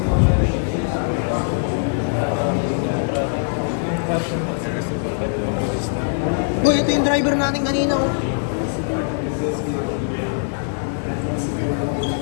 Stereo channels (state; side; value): silent; right; digital silence